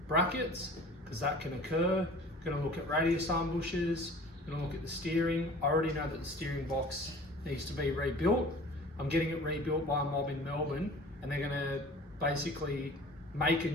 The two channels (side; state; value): both; normal; correlation 0.45